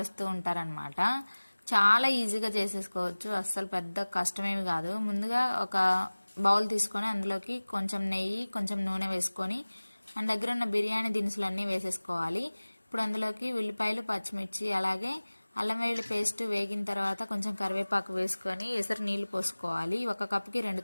ఉంటారనమాట. చాలా ఈజీగా చేసేసుకోవచ్చు, అస్సలు పెద్ద కష్టమేమి కాదు. ముందుగా ఒక బౌల్ తీసుకొని అందులోకి కొంచెం నెయ్యి, కొంచెం నూనె వేసుకొని మన దగ్గర ఉన్న బిర్యానీ దినుసులన్నీ వేసేసుకోవాలి. ఇప్పుడు అందులోకి ఉల్లిపాయలు, పచ్చిమిర్చి, అలాగే అల్లం వెల్లుల్లి పేస్ట్ వేగిన తర్వాత కొంచెం కరివేపాకు వేసుకొని ఎసరు నీళ్లు పోసుకోవాలి. ఒక కప్పుకి 2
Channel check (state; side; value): inverted; both; correlation -1.00